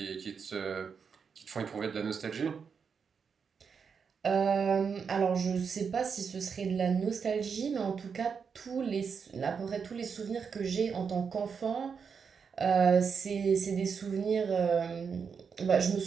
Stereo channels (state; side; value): quieter; left; 6.1 dB